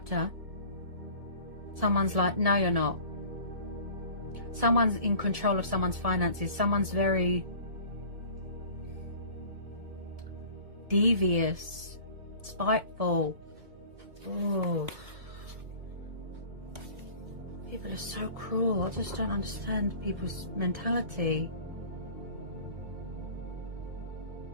someone's like, no, you're not. Someone's in control of someone's finances. Someone's very devious, spiteful. Oh, people are so cruel. I just don't understand people's mentality.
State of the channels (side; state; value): left; late; 2.2 ms